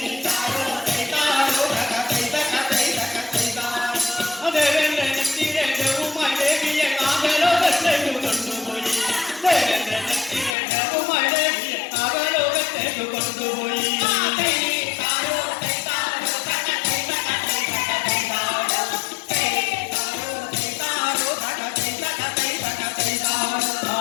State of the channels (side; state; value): right; drops out; at 10.6 s